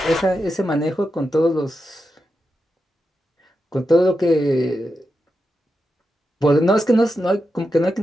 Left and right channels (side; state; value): both; normal; correlation 0.88